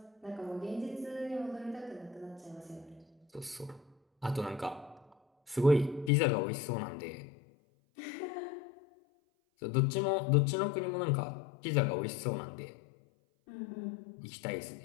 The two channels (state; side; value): drops out; right; at 6.1 s